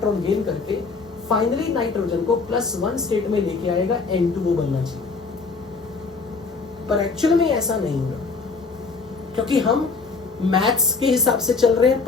गेन करके फाइनली नाइट्रोजन को +1 स्टेट में लेके आएगा, N2O बनना चाहिए। पर एक्चुअल में ऐसा नहीं होगा, क्योंकि हम मैथ्स के हिसाब से चल रहे हैं,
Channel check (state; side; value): quieter; right; 4.4 dB